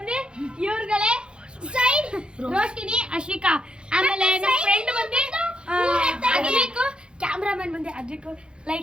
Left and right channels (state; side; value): late; left; 0.052 ms